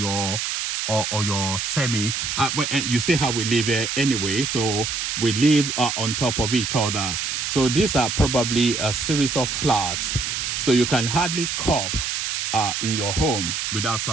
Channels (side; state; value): right; noise; hiss, 2 dB below the sound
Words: semi. But you see how we live here anyway. So we live on top of each other. So these are probably a series of flats. So you can hardly cough in your home without